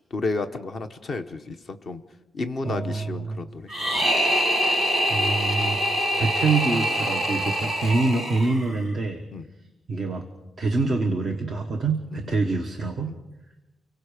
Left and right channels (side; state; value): both; normal; correlation 0.79